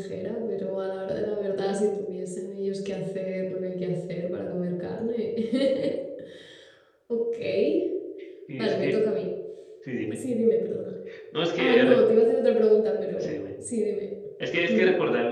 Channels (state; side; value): identical; both; correlation 1.00